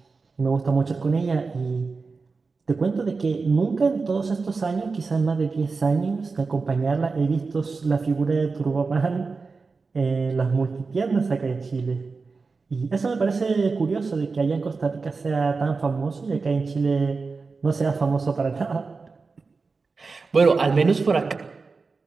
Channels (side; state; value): left; quieter; 4.3 dB